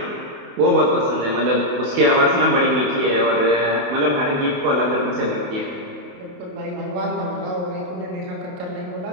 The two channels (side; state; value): left; late; 28 ms